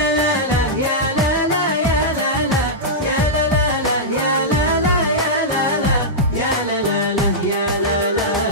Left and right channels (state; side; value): normal; both; correlation -0.10